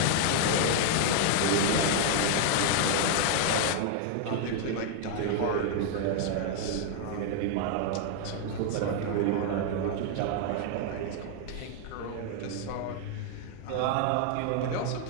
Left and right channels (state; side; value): different; both; correlation 0.00